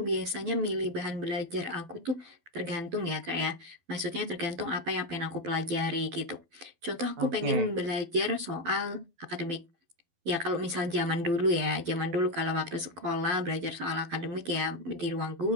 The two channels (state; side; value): late; left; 12 ms